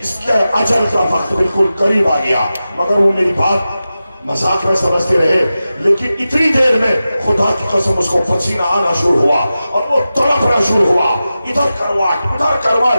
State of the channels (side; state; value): both; inverted; correlation -0.93